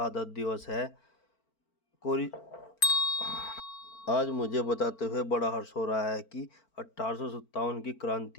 दिवस है। कोरी आज मुझे बताते हुए बड़ा हर्ष हो रहा है कि 1857 की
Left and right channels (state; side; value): late; right; 4.5 ms